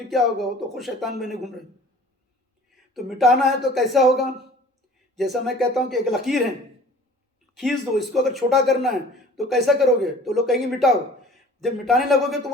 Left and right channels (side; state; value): both; normal; correlation 0.47